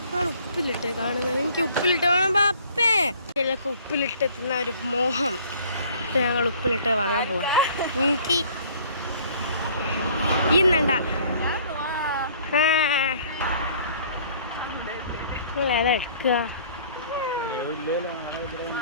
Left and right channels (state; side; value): inverted; both; correlation -0.54